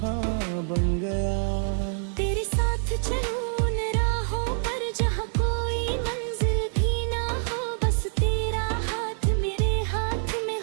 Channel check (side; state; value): left; silent; 61 dB below the other